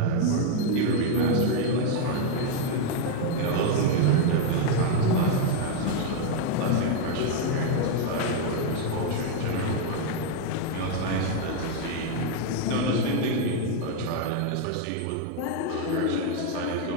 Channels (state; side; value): different; both; correlation 0.01